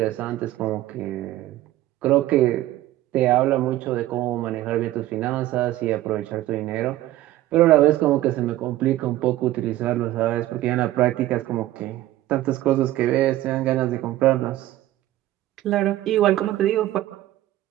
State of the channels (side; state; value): left; quieter; 15.0 dB